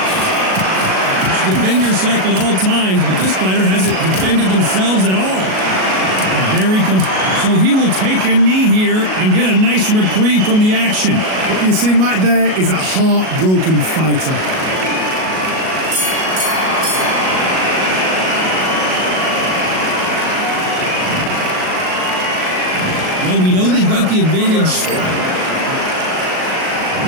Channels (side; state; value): left; late; 38 ms